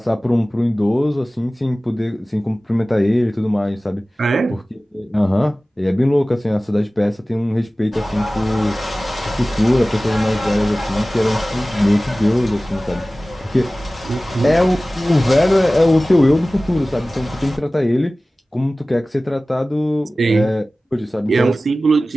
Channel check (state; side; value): normal; both; correlation 0.97